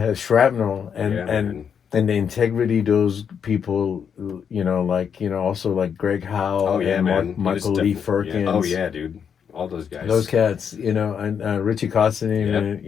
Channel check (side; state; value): right; quieter; 7.4 dB